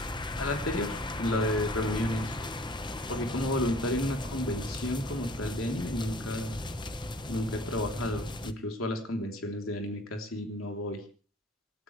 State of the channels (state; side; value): normal; both; correlation 0.50